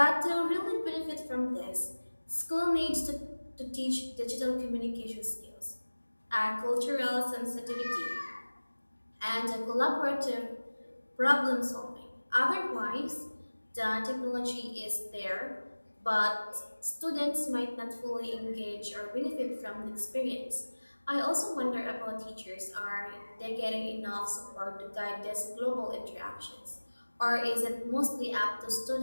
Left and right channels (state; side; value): inverted; both; correlation -1.00